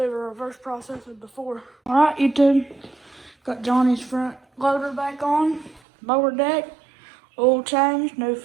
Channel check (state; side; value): drops out; left; at 5.8 s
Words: a reverse process of before. Alright, YouTube, got Johnny's front loader back on, mower deck, oil change, new